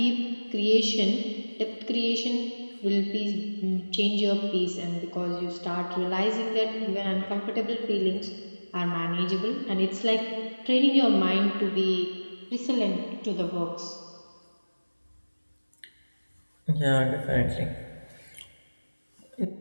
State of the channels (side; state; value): both; inverted; correlation -1.00